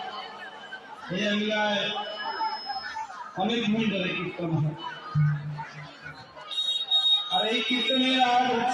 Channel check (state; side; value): identical; both; correlation 1.00